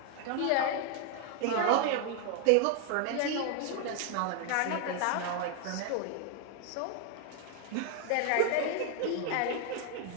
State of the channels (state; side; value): different; both; correlation 0.00